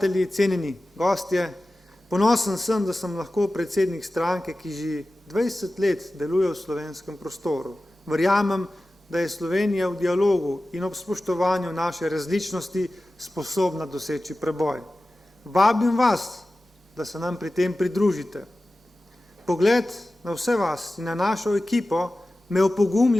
cenjeni gostje, ponosen sem, da sem lahko predsednik stranke, ki že 20 let deluje v slovenskem prostoru. Verjamem, da je Slovenija v dialogu in ob spoštovanju naše različnosti sposobna doseči preboj. Vabim vas, da se nam pri tem pridružite. Pogled na vse vas in na našo ekipo me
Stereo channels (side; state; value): both; normal; correlation 0.95